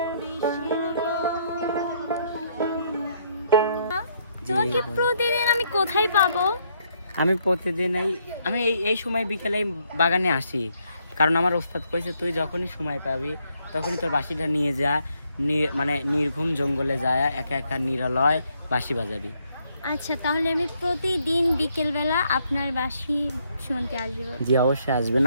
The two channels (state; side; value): inverted; both; correlation -0.72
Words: বিষের তোমাকে প্রতিদিন আমি কোথায় পাবো? আমি প্রতিদিন এই সময় বিকেলে বাগানে আসি, কারণ আমার ওস্তাদ কইছে তুই যখনই সময় পাবি তখনই তোর বাঁশিটা নিয়ে যা, মানে নির্ঘুম জঙ্গলে যায় একা একা নিরালয় বাঁশি বাজাবি। আচ্ছা, তাহলে আমি প্রতিদিন বিকেলবেলা আপনার বাঁশি শুনতে আসবো। জি অবশ্যই আসবেন,